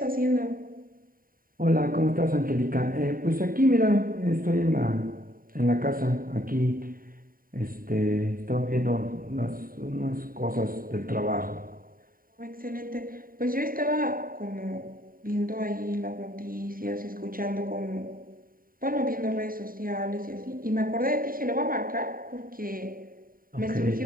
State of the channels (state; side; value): late; left; 0.41 ms